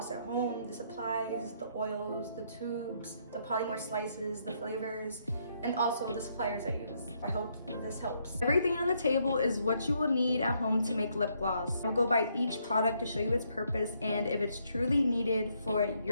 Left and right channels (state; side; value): inverted; both; correlation -0.73